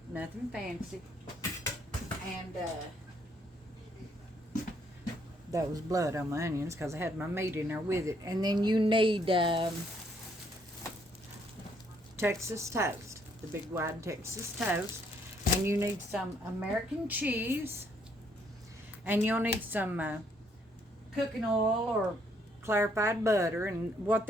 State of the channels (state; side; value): normal; both; correlation 0.69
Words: fancy. And that was blood on my onions because I had my meat in there with it. And then you need Texas toast, the big wide Texas toast. And you need some American cheese. And you'll need some cooking oil or clarified butter. And what